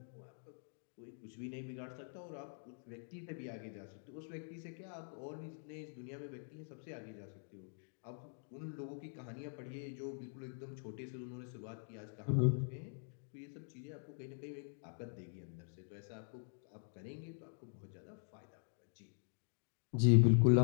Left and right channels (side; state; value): right; silent; digital silence